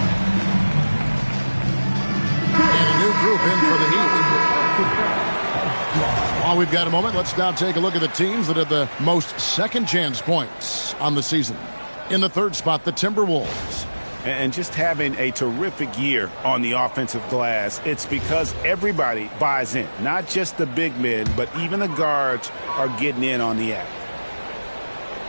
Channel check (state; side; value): inverted; both; correlation -1.00